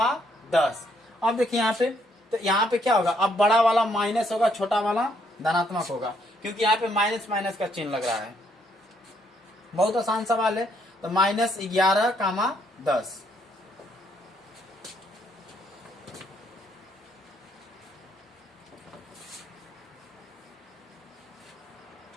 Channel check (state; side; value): normal; both; correlation 0.71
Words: 10। अब देखिए यहाँ पे, तो यहाँ पे क्या होगा, अब बड़ा वाला माइनस होगा, छोटा वाला धनात्मक होगा, क्योंकि यहाँ पे माइनस माइनस का चिन्ह लग रहा है। बहुत आसान सवाल है। तो -11, 10।